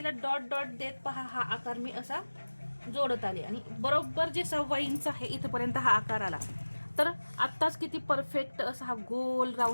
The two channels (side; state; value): both; inverted; correlation -1.00